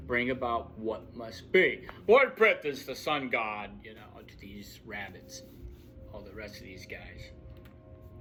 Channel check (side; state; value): both; identical; correlation 1.00